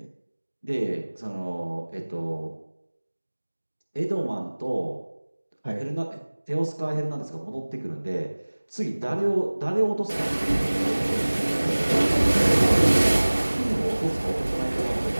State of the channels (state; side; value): inverted; both; correlation -1.00